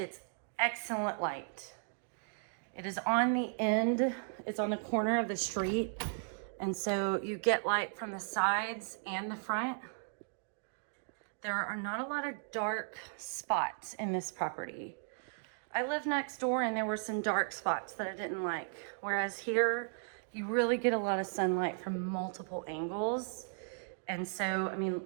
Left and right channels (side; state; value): left; silent; digital silence